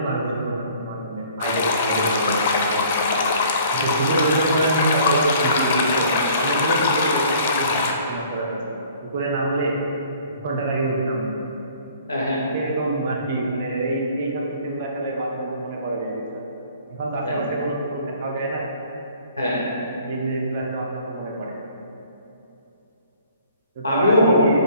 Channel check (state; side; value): inverted; both; correlation -0.54